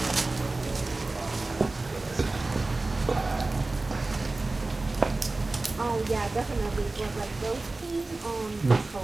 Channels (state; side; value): quieter; left; 3.2 dB